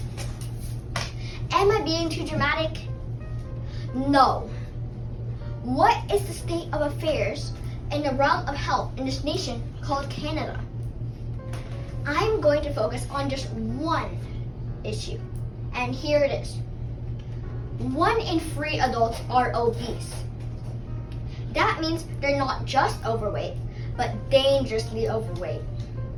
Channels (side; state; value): both; identical; correlation 1.00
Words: Am I being too dramatic? No. What is the state of affairs in the realm of health in this nation called Canada? I'm going to focus on just one issue, and here it is. 1 in 3 adults are obese. That means they're not just overweight, but dangerously overweight.